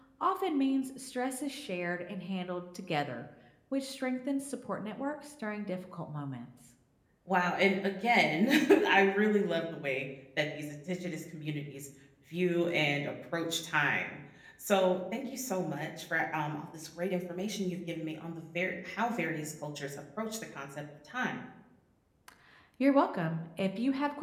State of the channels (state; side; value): identical; both; correlation 1.00